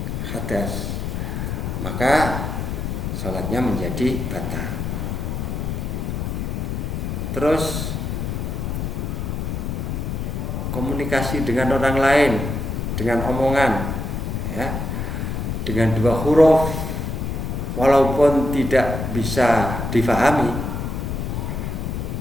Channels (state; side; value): noise; left; rumble, 3 dB below the sound